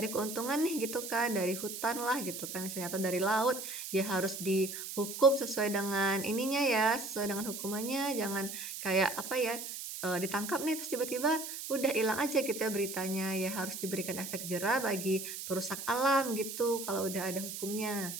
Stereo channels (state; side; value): noise; right; hiss, 7 dB below the sound